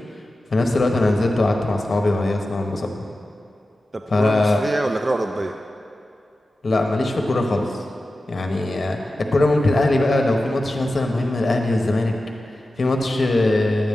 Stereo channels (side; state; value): both; normal; correlation 0.94